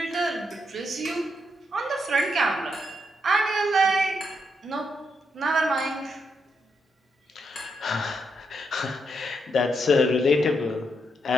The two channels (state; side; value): normal; both; correlation 0.80